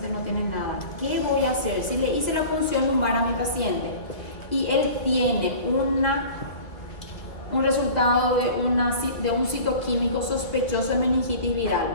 no tiene nada. ¿Qué voy a hacer? Si le hice la punción lumbar a mi paciente y él tiene un resultado de un citoquímico sospechoso de meningitis viral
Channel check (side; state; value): right; late; 1.7 ms